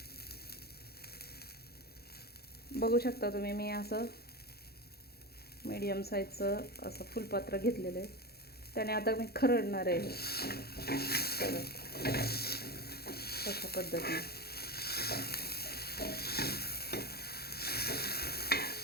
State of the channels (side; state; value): right; late; 0.46 ms